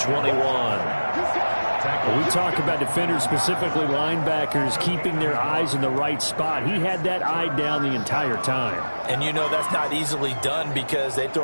When we talk about defenders, specifically linebackers, keeping their eyes in the right spot. He had that eye down the entire time. And you know that's not easily done because they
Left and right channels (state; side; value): inverted; both; correlation -1.00